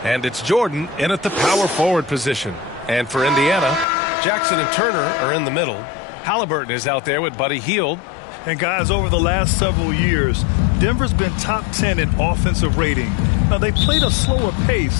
and it's Jordan in at the power forward position. And for Indiana, Jackson and Turner are in the middle. Halliburton is out there with Buddy Hield. And guys, over the last several years, Denver's been top 10 in offensive rating. Now, they played a slower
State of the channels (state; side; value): drops out; right; at 3.9 s